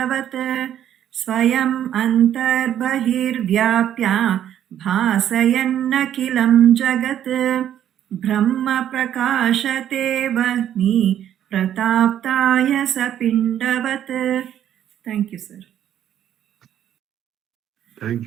स्वयं अन्तर्बहिर्व्याप्य भासयन्नखिलं जगत् ब्रह्म प्रकाशते वह्नि प्रताप्ताय स पिण्डवत्. Thank you, sir. Thank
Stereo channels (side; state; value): left; quieter; 10.6 dB